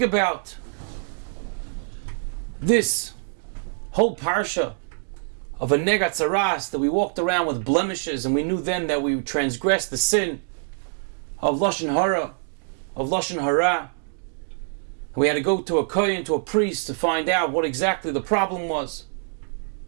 this whole Parsha of a negat tzaras, that we walked around with blemishes and we knew then that we transgressed the sin of Lashon Hara, of Lashon Hara. We had to go to a kohen, to a priest, to find out what exactly the problem was.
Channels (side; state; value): left; silent; digital silence